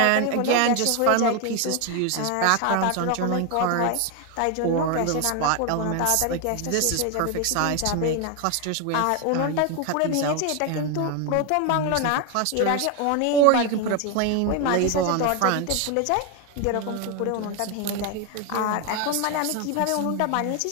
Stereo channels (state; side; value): different; both; correlation 0.01